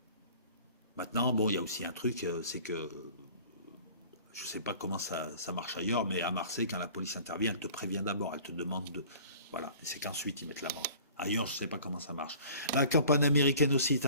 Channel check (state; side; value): inverted; both; correlation -0.47